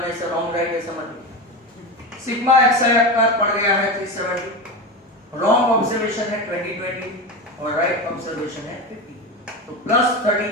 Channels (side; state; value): both; normal; correlation 0.21